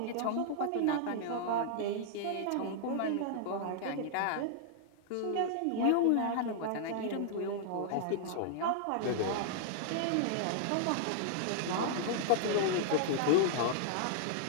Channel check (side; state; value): both; different; correlation -0.01